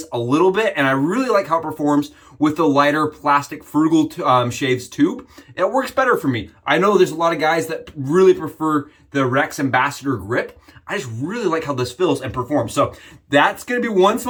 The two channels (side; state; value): both; identical; correlation 1.00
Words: a little bit, and I really like how it performs with the lighter plastic Frugal Shaves tube. It works better for me. I know there's a lot of guys that really prefer the Rex Ambassador grip. I just really like how this feels and performs. So that's going to be one